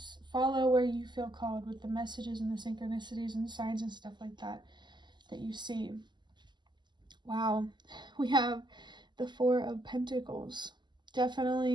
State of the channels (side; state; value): left; late; 0.21 ms